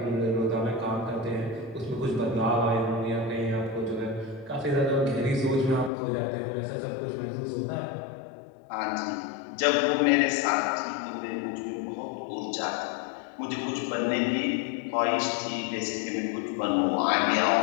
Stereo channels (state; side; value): drops out; right; at 5.9 s